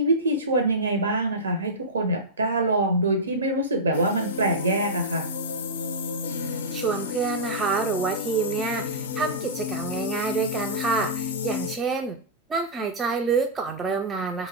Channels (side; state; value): both; normal; correlation -0.13